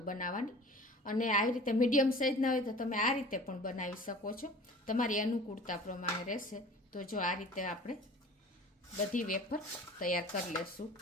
બનાવવાની. અને આવી રીતે મીડિયમ સાઇઝના હોય તો તમે આ રીતે પણ બનાવી શકો છો. તમારી અનુકૂળતા પ્રમાણે રહેશે. તો જો આ રીતે આપણે બધી વેફર તૈયાર કરી લેશું.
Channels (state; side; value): normal; both; correlation 0.43